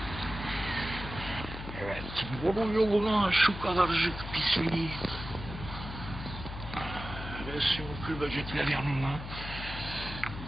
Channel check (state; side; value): noise; left; hum, 9 dB below the sound